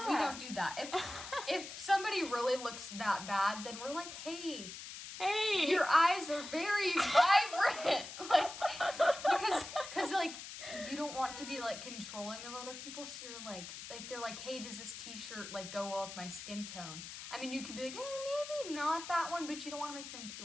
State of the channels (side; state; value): left; noise; hiss, 10 dB below the sound